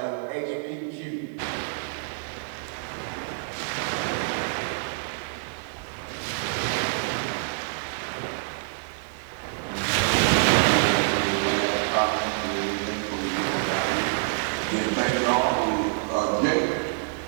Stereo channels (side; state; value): left; silent; digital silence